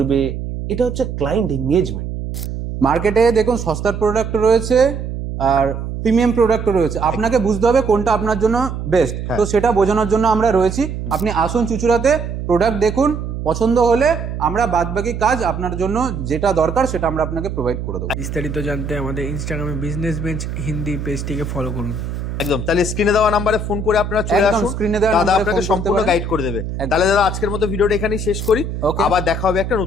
এটা হচ্ছে ক্লায়েন্ট এঙ্গেজমেন্ট। মার্কেটে দেখুন সস্তার প্রোডাক্ট রয়েছে আর প্রিমিয়াম প্রোডাক্ট রয়েছে, আপনাকে বুঝতে হবে কোনটা আপনার জন্য বেস্ট। তো সেটা বোঝানোর জন্য আমরা রয়েছি। আপনি আসুন চুচুড়াতে, প্রোডাক্ট দেখুন, পছন্দ হলে আমরা বাদবাকি কাজ আপনার জন্য যেটা দরকার সেটা আমরা আপনাকে প্রোভাইড করে দেবো। বিস্তারিত জানতে আমাদের ইনস্টাগ্রামে বিজনেস বেঞ্চ হিন্দি পেজটিকে ফলো করুন। একদম, তাহলে স্ক্রিনে দেওয়া নাম্বারে ফোন করে আপনারা চলে একদম, আসুন, স্ক্রিনে দেওয়া দাদা নাম্বারে আপনাকে ফোন করতে সম্পূর্ণ পারেন। গাইড করে দেবে। একদম। তাহলে দাদা আজকের মতো ভিডিওটা এখানেই শেষ করি, Okay. আবার দেখা হবে একটা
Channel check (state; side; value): noise; right; hum, 6 dB below the sound